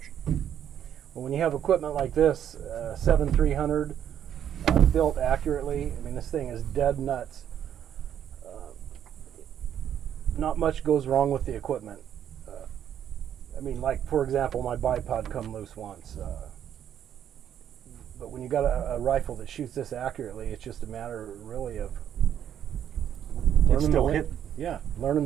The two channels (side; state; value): left; quieter; 9.7 dB